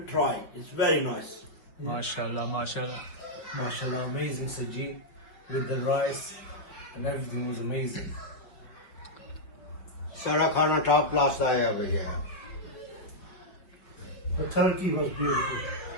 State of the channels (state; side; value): late; right; 5.7 ms